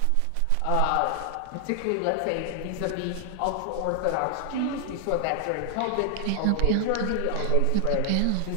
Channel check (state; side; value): different; both; correlation 0.00